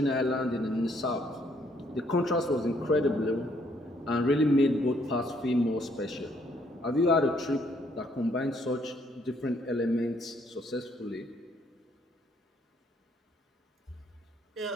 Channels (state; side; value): normal; both; correlation 0.68